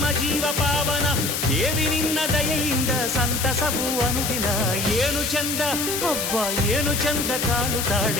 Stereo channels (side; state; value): left; noise; hiss, 2 dB below the sound